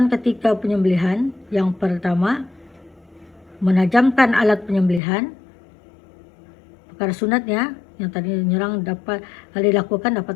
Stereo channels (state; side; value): drops out; right; at 5.0 s